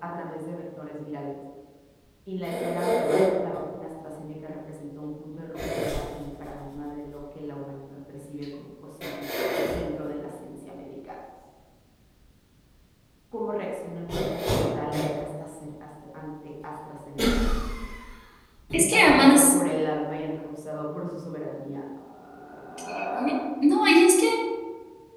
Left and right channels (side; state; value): both; identical; correlation 1.00